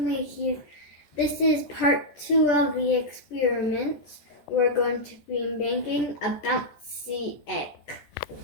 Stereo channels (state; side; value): late; right; 14 ms